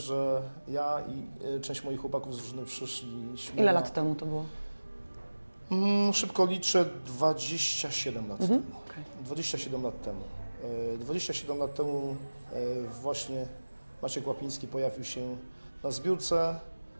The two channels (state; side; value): inverted; both; correlation -1.00